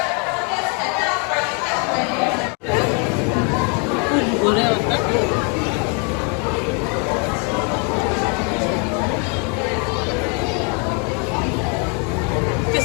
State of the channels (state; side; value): quieter; right; 36.4 dB